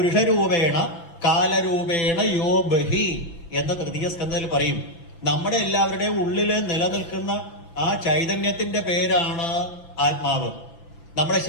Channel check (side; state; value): right; late; 5.9 ms